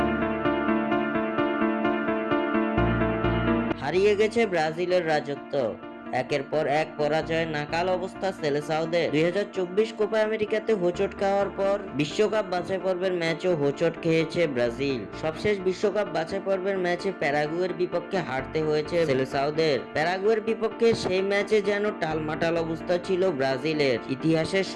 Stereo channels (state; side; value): identical; both; correlation 1.00